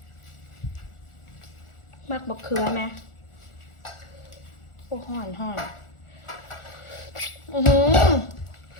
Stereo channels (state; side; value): late; right; 1.4 ms